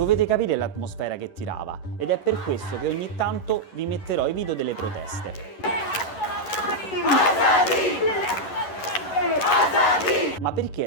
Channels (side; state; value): right; late; 11 ms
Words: capire l'atmosfera che tirava ed è per questo che ogni tanto vi metterò i video delle proteste. Ma perché è